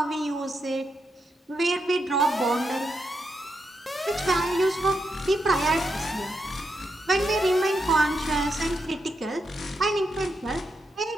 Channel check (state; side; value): normal; both; correlation 0.83